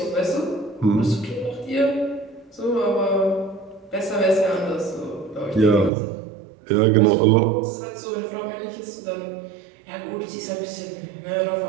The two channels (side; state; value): left; drops out; at 5.9 s